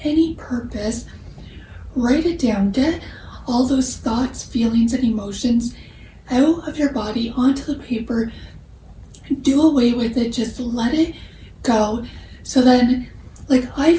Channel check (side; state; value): both; identical; correlation 1.00